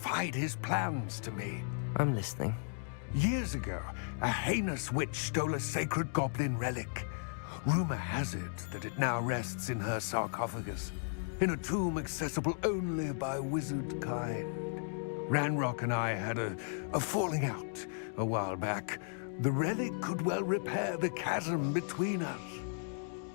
his plans to me. I'm listening. Years ago, a heinous witch stole a sacred goblin relic. Rumor has it that it now rests in her sarcophagus, in a tomb accessible only by wizard kind. Ranrock and I had a falling out a while back. The relic could well repair the chasm between us.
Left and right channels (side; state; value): right; silent; digital silence